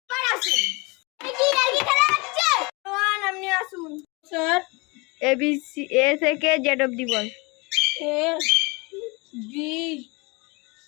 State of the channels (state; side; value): quieter; right; 27.6 dB